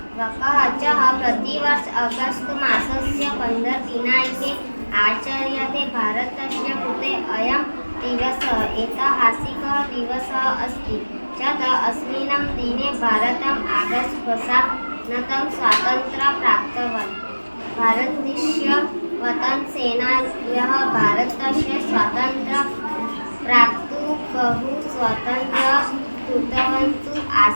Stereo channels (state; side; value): inverted; both; correlation -1.00